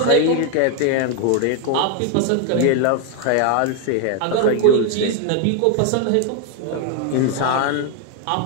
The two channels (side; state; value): both; different; correlation 0.00